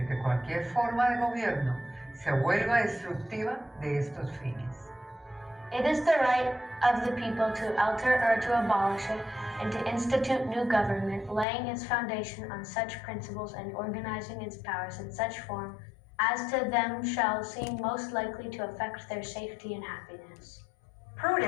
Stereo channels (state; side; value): drops out; right; at 11.5 s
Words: que cualquier forma de gobierno se vuelva destructiva de estos fines. It is the right of the people to alter or to abolish it, and to institute new government, laying its foundation on such principles and organizing its powers in such form as to them shall seem most likely to affect their safety and happiness.